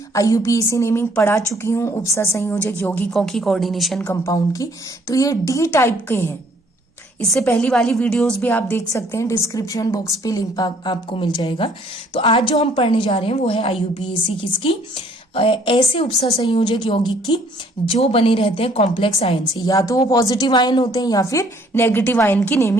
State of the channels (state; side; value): normal; both; correlation 0.62